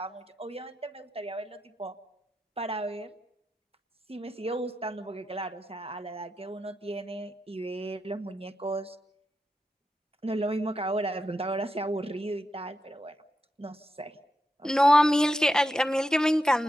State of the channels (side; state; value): both; normal; correlation 0.87